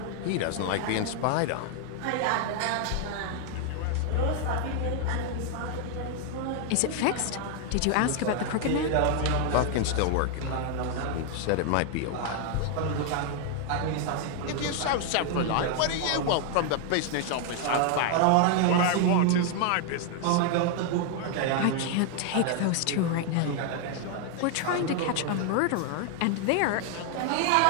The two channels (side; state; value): both; different; correlation 0.00